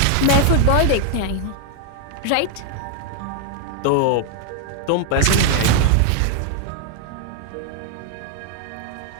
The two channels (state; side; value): different; both; correlation 0.00